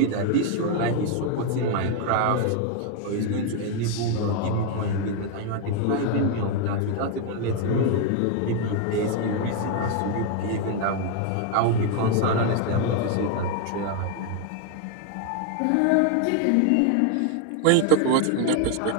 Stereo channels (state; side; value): different; both; correlation 0.01